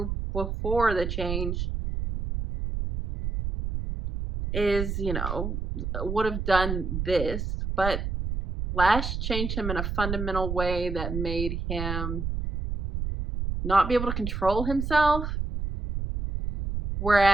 before the change, is, would have done this. But Lash changed him in a fundamental way that made him not be able to control himself.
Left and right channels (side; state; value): right; noise; rumble, 3 dB below the sound